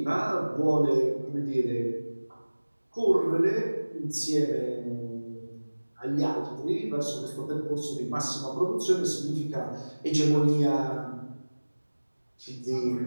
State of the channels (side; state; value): both; inverted; correlation -1.00